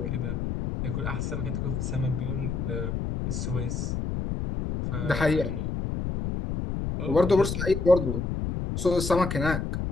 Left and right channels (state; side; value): noise; left; rumble, 2 dB below the sound